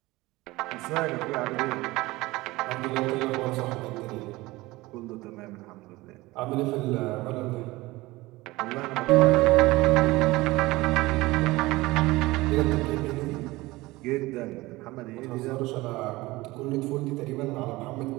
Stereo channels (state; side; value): quieter; left; 20.2 dB